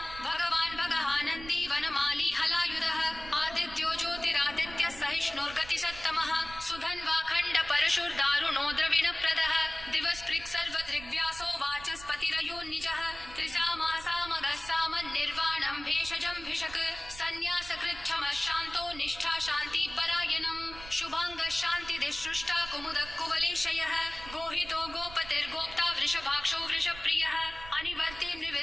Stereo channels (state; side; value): noise; right; rumble, 15 dB below the sound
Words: भगवान् भगहानन्दी वनमाली हलायुधः आदित्यो ज्योतिरादित्यः सहिष्णुर्गतिसत्तमः सुधन्वाखण्ड परशुर्दारुणो द्रविणप्रदः दिवस्पृक् सर्वदृग्व्यासो वाचस्पतिरयोन्निजः त्रिसामासामगः सामन्निर्वाणं भेषजं भिषक् सन्न्यासकृच्छमः शान्तो निष्ठा शान्तिपरायणम् शुभाङ्गः शान्तिदिसृष्टा कुमुदः कुवलेशयः गोहितो गोपतिर्गोप्ता वृषभाक्षो वृषप्रियः अनिवर्ति